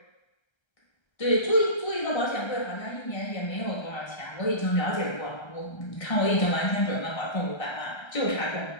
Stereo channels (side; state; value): right; late; 1.3 ms